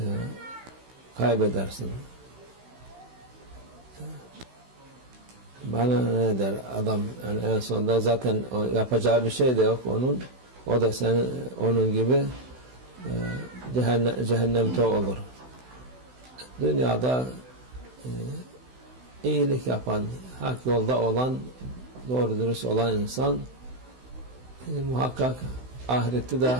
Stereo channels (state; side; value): late; left; 16 ms